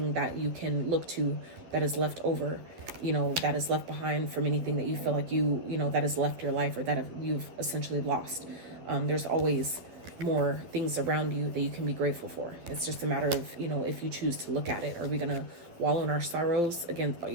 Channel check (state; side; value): late; left; 11 ms